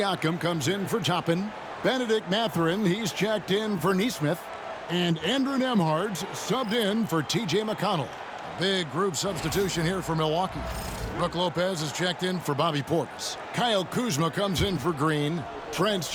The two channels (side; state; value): both; identical; correlation 1.00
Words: comes in for Toppin. Benedict Mathurin, he's checked in for Neesmith. And Andrew Nembhard's subbed in for T.J. McConnell. Big group substitution here for Milwaukee. Brook Lopez is checked in for Bobby Portis. Kyle Kuzma comes in for Green. Trent's